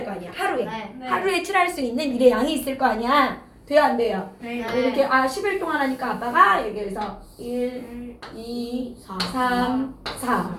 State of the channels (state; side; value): identical; both; correlation 1.00